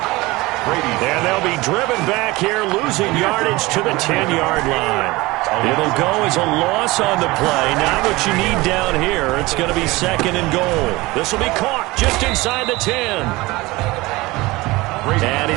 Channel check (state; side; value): quieter; left; 21.3 dB